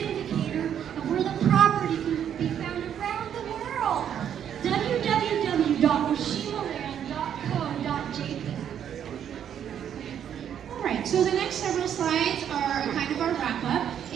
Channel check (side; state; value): left; quieter; 9.2 dB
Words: of where the property can be found around the world. www.oshimaland.co.jp. Alright, so the next several slides are kind of our wrap-up.